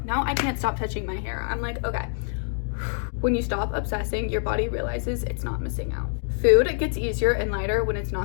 now I can't stop touching my hair. I'm like, okay. When you stop obsessing, your body realizes it's not missing out. Food gets easier and lighter when it's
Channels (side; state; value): right; silent; 61 dB below the other